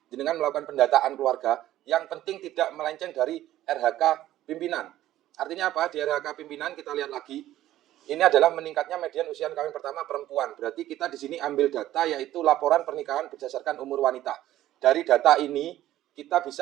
jenengan melakukan pendataan keluarga, yang penting tidak melenceng dari RHK pimpinan. Artinya apa? Di RHK pimpinan kita lihat lagi, ini adalah meningkatnya median usia kawin pertama perempuan. Berarti kita di sini ambil data yaitu laporan pernikahan berdasarkan umur wanita. Dari data ini kita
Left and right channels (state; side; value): quieter; left; 13.8 dB